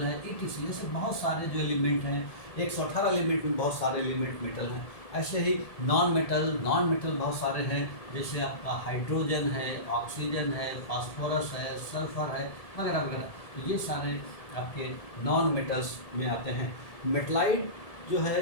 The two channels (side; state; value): right; late; 1.7 ms